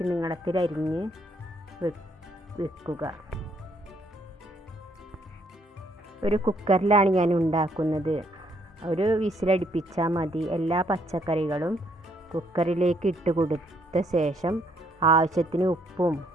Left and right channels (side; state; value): both; normal; correlation 0.69